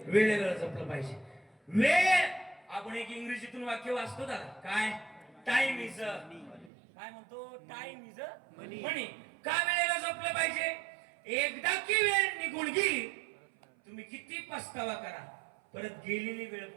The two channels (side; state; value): left; drops out; at 6.7 s